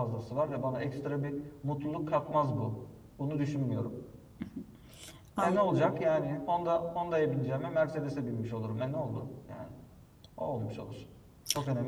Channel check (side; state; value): both; identical; correlation 1.00